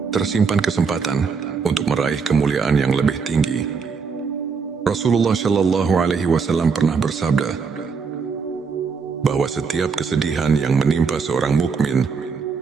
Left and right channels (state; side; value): quieter; left; 5.4 dB